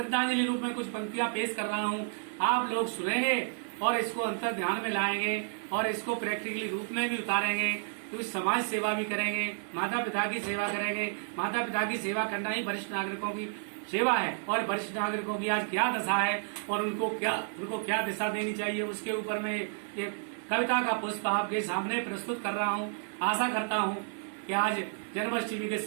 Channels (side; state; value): left; silent; 56 dB below the other